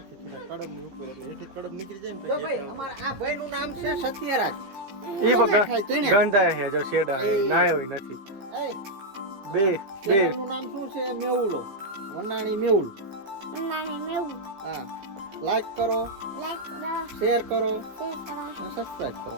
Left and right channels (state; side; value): late; left; 15 ms